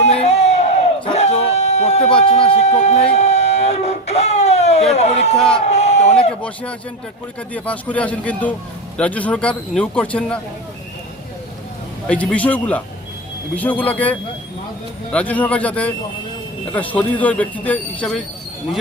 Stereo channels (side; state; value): both; normal; correlation 0.16